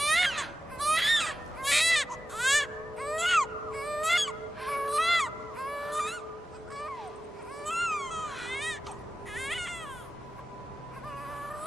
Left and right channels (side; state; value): both; normal; correlation 0.94